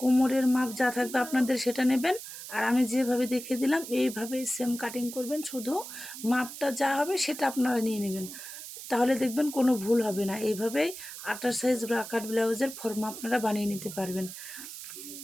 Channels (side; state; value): right; noise; hiss, 11 dB below the sound